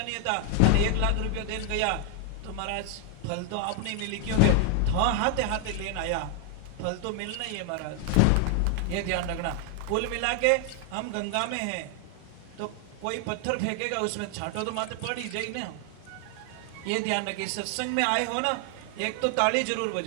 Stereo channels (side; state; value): both; different; correlation 0.01